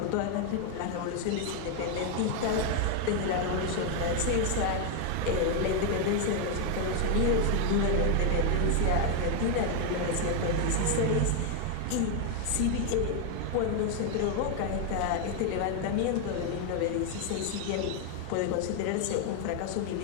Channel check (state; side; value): different; both; correlation 0.01